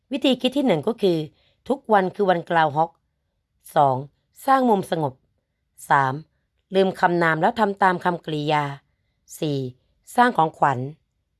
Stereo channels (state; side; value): identical; both; correlation 1.00